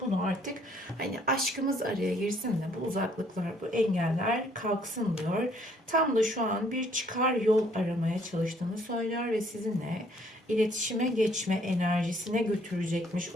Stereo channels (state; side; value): normal; both; correlation 0.64